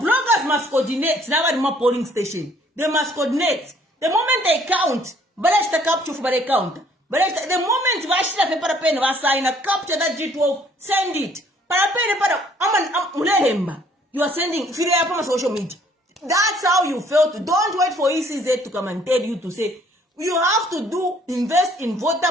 must coordinate. Now more polling station. They must coordinate. The moment they count, but capture for the count. But the moment Vashita paper pen was sign a capture that G12, send it. You are sending if you have social media. That's how you felt. Don't wait for ECZ to come and tell you to say you have to invest in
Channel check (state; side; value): normal; both; correlation 0.61